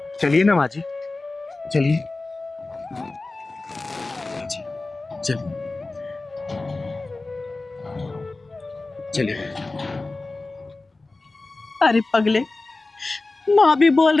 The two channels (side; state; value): right; quieter; 3.3 dB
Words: चलिए ना माँ जी, चलिए। चलिए चलिए। अरे पगले, माँ भी बोल